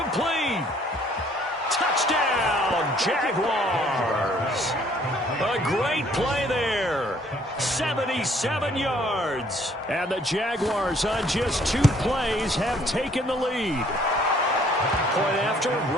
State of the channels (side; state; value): both; normal; correlation 0.61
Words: Touchdown, Jaguars. A great play there. 77 yards. And the Jaguars on just 2 plays have taken the lead. Point after,